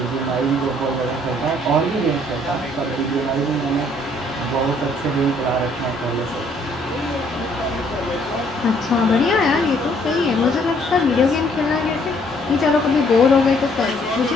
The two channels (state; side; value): normal; both; correlation 0.64